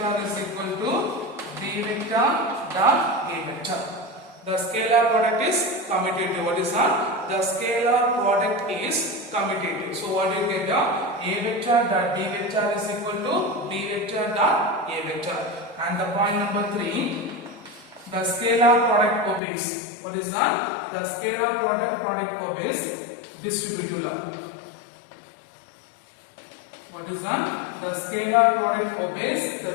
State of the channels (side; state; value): right; drops out; at 19.4 s